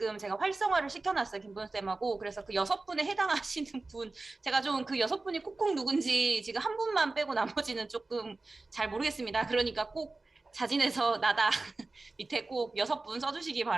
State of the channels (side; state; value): left; quieter; 3.4 dB